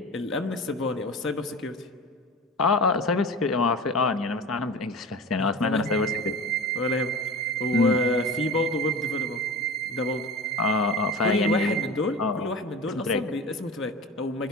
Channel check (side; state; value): both; normal; correlation 0.33